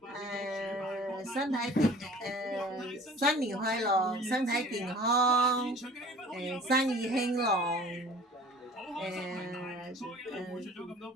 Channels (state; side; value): normal; both; correlation 0.46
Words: 新年快樂，身體健康，生意興隆，